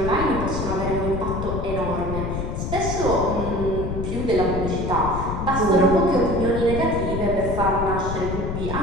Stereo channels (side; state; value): left; noise; rumble, 3 dB below the sound